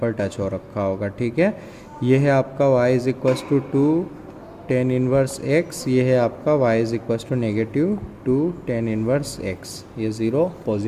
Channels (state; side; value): identical; both; correlation 1.00